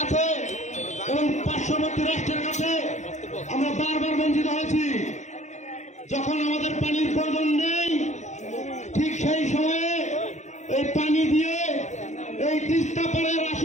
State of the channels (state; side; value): late; right; 0.34 ms